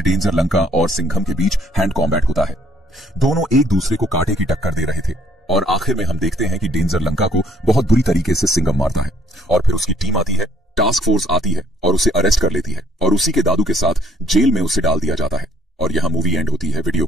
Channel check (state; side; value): normal; both; correlation 0.55